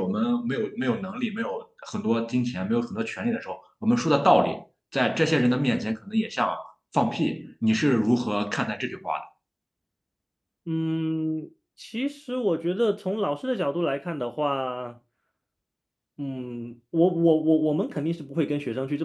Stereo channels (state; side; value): identical; both; correlation 1.00